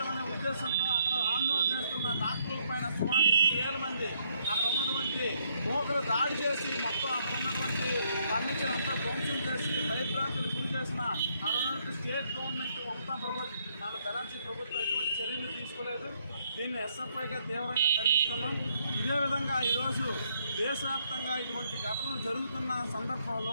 ఉద్దేశంతో అక్కడ ఆందోళన చేస్తున్న డాక్టర్ల పైన సుమారు 8,000 మంది అక్కడ ఉన్నటువంటి మోకలు దాడి చేసి మొత్తం అక్కడ ఉన్నటువంటి ఫర్నిచర్ అంతా ధ్వంసం చేసి భయభ్రాంతులు గురి చేసిన అక్కడ ఉన్నటువంటి స్టేట్ గవర్నమెంట్ మమతా ప్రభుత్వం బెనర్జీ ప్రభుత్వం ఎటువంటి చర్యలు తీసుకోలేదు. దీన్ని ఎస్ఎఫ్ఐగా తీవ్రంగా ఖండిస్తున్నాం. ఇదే విధంగా ఈరోజు దేశవ్యాప్తంగా ఇటువంటి ఘటనలు జరుగుతున్న సందర్భంలో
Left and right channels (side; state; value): both; inverted; correlation -0.71